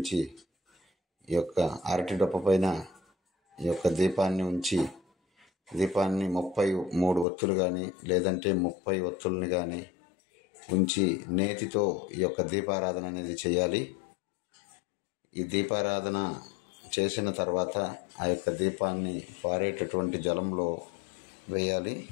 ఈ యొక్క అరటి దొప్ప పైన ఈ యొక్క దీపాన్ని ఉంచి, దీపాన్ని 33 ఒత్తులు కానీ లేదంటే 30 ఒత్తుల్ని కానీ ఉంచి నేతితో ఈ యొక్క దీపారాధన అనేది చేయాలి. ఈ దీపారాధన చేసిన తర్వాత ఆ యొక్క దీపాన్ని పారేటటువంటి జలంలో వేయాలి.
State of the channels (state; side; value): drops out; right; at 7.2 s